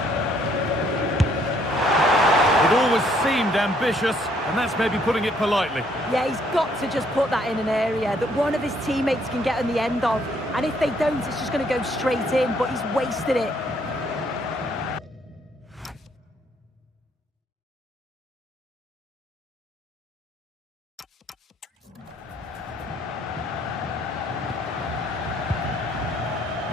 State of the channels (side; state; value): both; normal; correlation 0.66